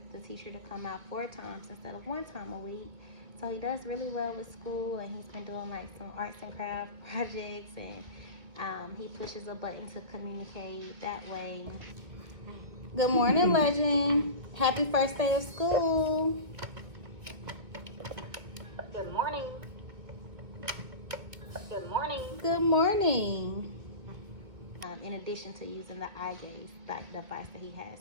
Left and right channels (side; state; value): left; late; 2.1 ms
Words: the teacher to come out 4 times instead of 1 time a week. So he does really well with school, and he's been doing like some arts and craft projects, and he pushes a button to communicate that way. Good morning, Legend. Happy first day of school. Good morning. Good morning. Good morning. In addition to using the eye gaze device that he has